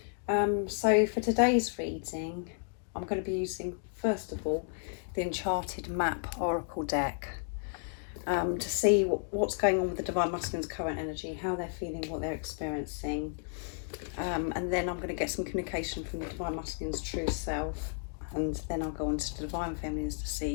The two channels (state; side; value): silent; right; 56 dB below the other